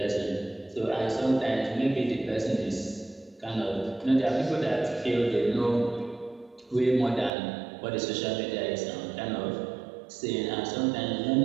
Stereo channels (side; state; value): left; drops out; at 7.3 s